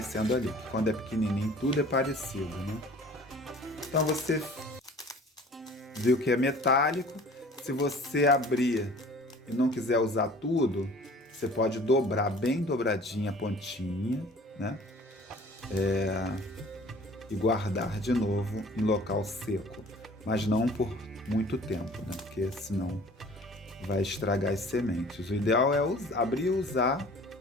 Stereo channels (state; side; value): normal; both; correlation 0.48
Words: ali. Quando é pequenininho, tudo é parecido, né? Então você viu que é metálico. Se você abrir e não quiser usar tudo, você pode dobrar bem dobradinha a pontinha, né? E guardar de novo em local seco, mas não por muito tempo, né? Porque senão vai estragar as sementes. O ideal é abrir e usar